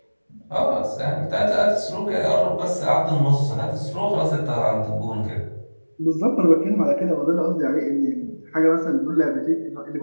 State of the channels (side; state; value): both; inverted; correlation -1.00